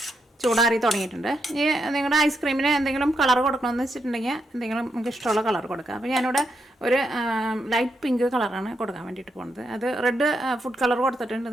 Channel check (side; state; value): both; normal; correlation 0.81